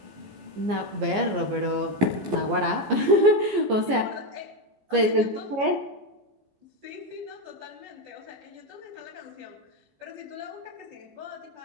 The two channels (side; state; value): left; late; 14 ms